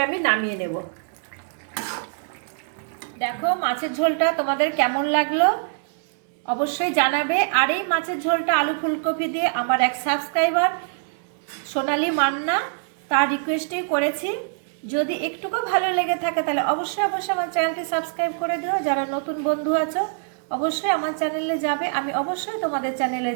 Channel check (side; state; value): left; silent; digital silence